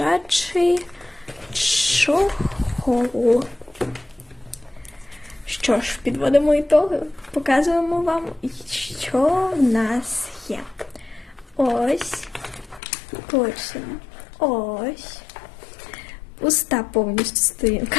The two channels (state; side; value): drops out; right; at 12.8 s